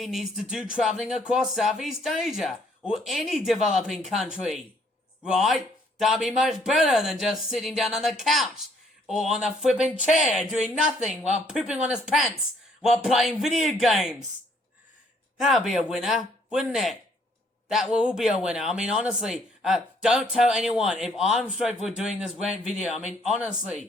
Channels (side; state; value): both; normal; correlation 0.65